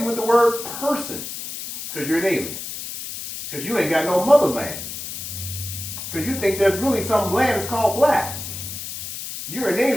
with the word person because you're an alien. Because you ain't got no motherland. Because you think there's really some land that's called black. You're an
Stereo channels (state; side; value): noise; left; hiss, 8 dB below the sound